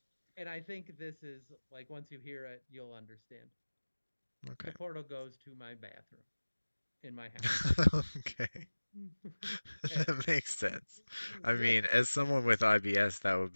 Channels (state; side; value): inverted; both; correlation -1.00